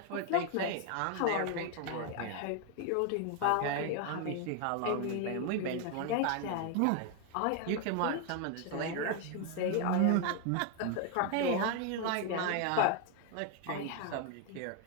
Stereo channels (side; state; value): both; different; correlation 0.01